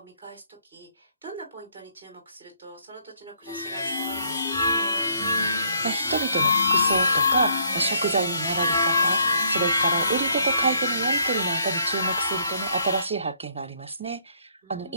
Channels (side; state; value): both; inverted; correlation -0.67